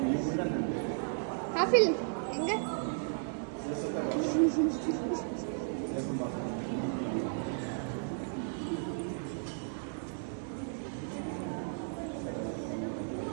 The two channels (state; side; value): silent; left; digital silence